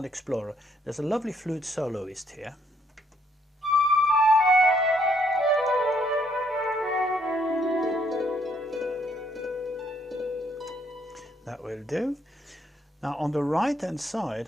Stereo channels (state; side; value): normal; both; correlation 0.69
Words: Explorer. There's a lovely flute soloist here. That will do. Now on the right hand